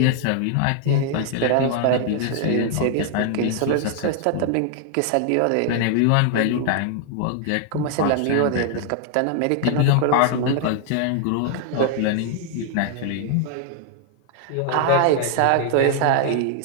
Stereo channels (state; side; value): different; both; correlation 0.00